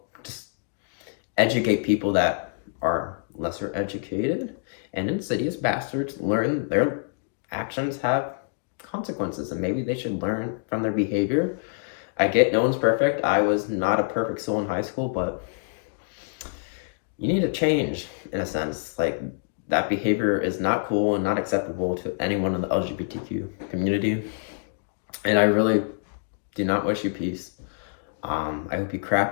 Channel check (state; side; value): silent; right; digital silence